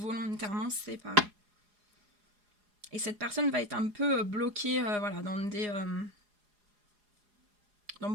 séparé. Et cette personne va être un peu bloquée voilà, dans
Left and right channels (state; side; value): late; left; 4.8 ms